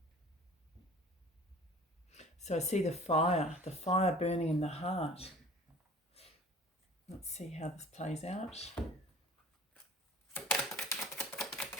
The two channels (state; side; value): normal; both; correlation 0.45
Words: So I see the fire burning in the heart. Let's see how this plays out.